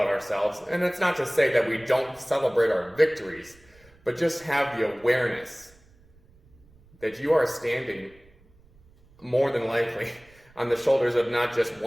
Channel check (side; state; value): right; noise; rumble, 29 dB below the sound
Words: ourselves, and it's not to say that we don't celebrate our victories, but just have the awareness that you are standing more than likely on the shoulders of not just